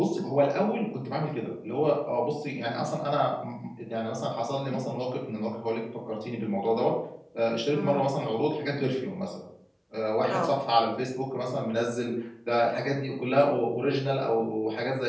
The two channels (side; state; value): both; identical; correlation 1.00